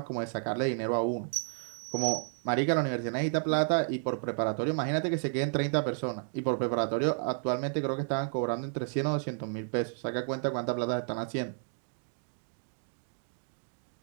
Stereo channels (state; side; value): silent; left; digital silence